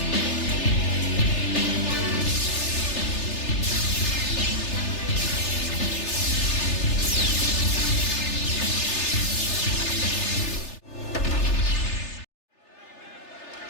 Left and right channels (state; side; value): late; right; 3.3 ms